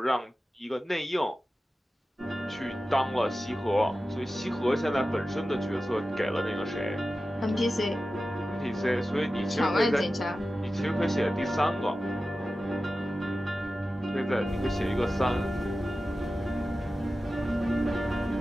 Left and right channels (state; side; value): normal; both; correlation 0.94